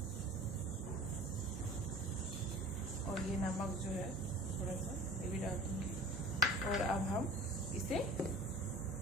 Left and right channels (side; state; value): both; normal; correlation 0.42